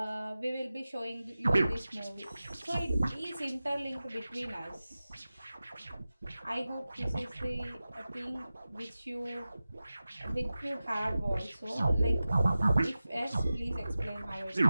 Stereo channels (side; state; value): both; inverted; correlation -0.95